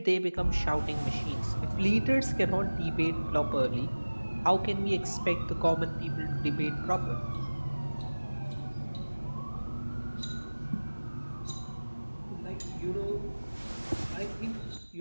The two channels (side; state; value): both; inverted; correlation -1.00